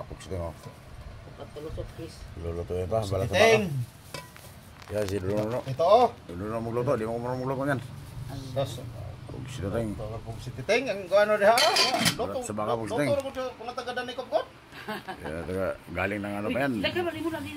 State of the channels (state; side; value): identical; both; correlation 1.00